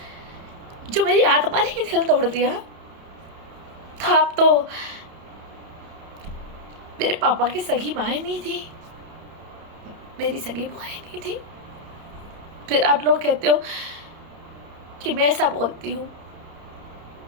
जो मेरी आत्मा ने ही दिल तोड़ दिया था। अब तो मेरे पापा की सगी माँ नहीं थी, मेरी सगी बुआ नहीं थी। फिर आप लोग कहते हो कि मैं ऐसा बोलती हूँ।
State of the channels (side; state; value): left; late; 30 ms